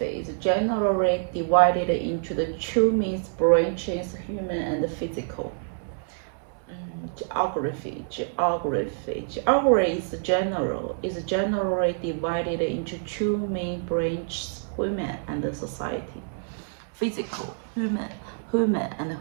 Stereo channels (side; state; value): left; silent; 60 dB below the other